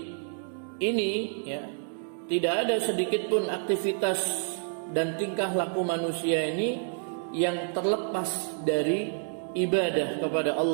ini ya, tidak ada sedikit pun aktivitas dan tingkah laku manusia ini yang terlepas dari ibadah kepada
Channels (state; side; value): silent; left; digital silence